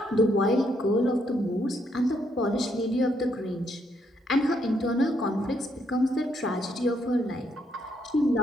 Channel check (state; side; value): normal; both; correlation 0.74